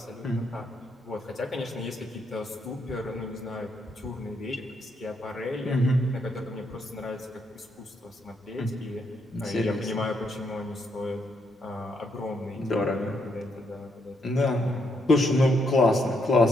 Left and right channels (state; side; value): normal; both; correlation 0.76